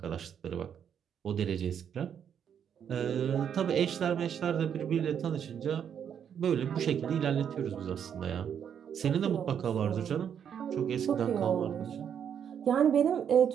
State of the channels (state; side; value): quieter; left; 8.3 dB